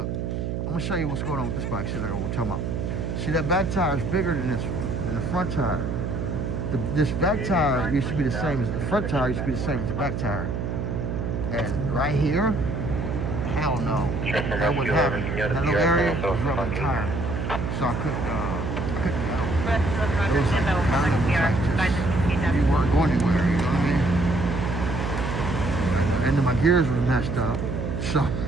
I'm gonna show you what's going on with this bike, see what we're talking about. See, that back tire is bigger than this one, than the front tire. This back tire used to be the same as the front tire, used to be the same as the back tire. And right here, hell no, that wouldn't happen. That little area was rubbing the tire, so I couldn't you weren't going anywhere, you know what I mean? And then my gears were messed up, so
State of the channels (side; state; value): right; noise; hum, 2 dB below the sound